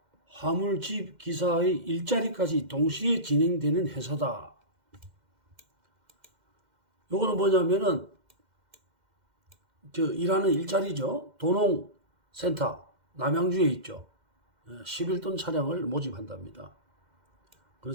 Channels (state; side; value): late; left; 2.1 ms